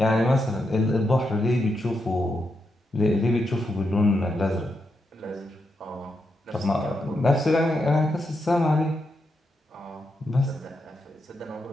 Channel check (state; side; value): normal; both; correlation 0.84